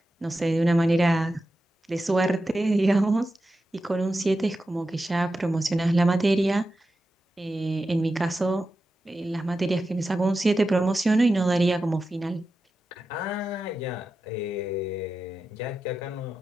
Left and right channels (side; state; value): both; normal; correlation 0.91